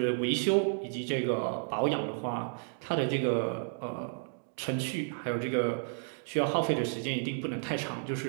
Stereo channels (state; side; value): silent; left; 56 dB below the other